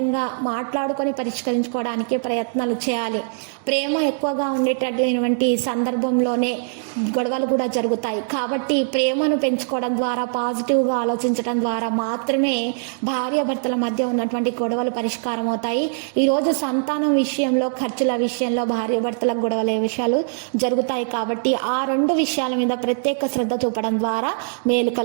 మాట్లాడుకొని పరిష్కరించుకోవడానికి ప్రయత్నాలు చేయాలి. ప్రేమ ఎక్కువగా ఉండేటటువంటి సందర్భంలోనే గొడవలు కూడా జరుగుతాయి. కాబట్టి ప్రేమను పెంచుకోవడం ద్వారా, పాజిటివ్గా ఆలోచించడం ద్వారా మాత్రమే భార్యాభర్తల మధ్య ఉన్నటువంటి గొడవలు పరిష్కారం అవుతాయి. ఈరోజు సంతానం విషయంలో, ఖర్చుల విషయంలో భార్యాభర్తల గొడవల విషయాలు జరుగుతాయి. కాబట్టి ఆ రెండు విషయాల మీద ప్రత్యేక శ్రద్ధ చూపడం ద్వారా మేలు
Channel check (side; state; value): left; silent; digital silence